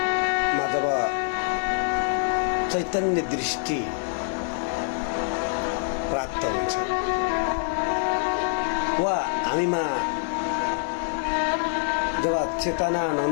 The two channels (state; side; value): silent; right; 61 dB below the other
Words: मा जब चैतन्य दृष्टि प्राप्त हुन्छ वा हामीमा जब चेतना